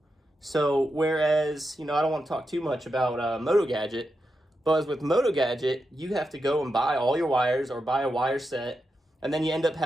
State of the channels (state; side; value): normal; both; correlation 0.87